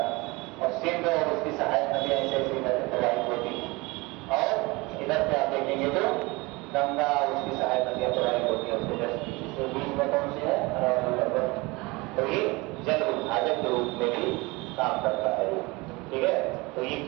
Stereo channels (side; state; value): left; quieter; 24.1 dB